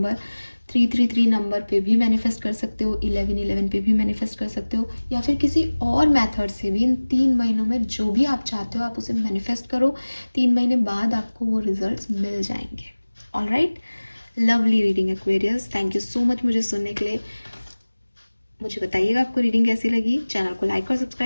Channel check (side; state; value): both; inverted; correlation -1.00